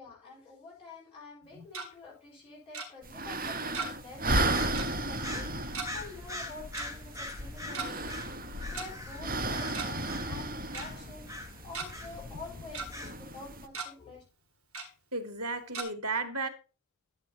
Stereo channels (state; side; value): normal; both; correlation 0.16